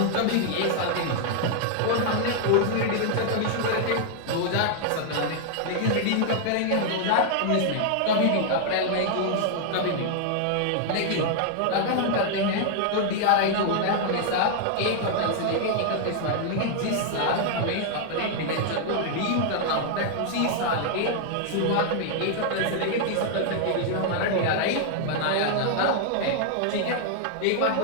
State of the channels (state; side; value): different; both; correlation 0.00